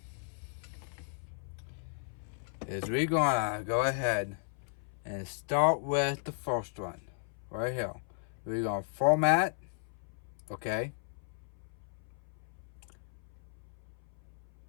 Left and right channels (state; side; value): silent; right; 54 dB below the other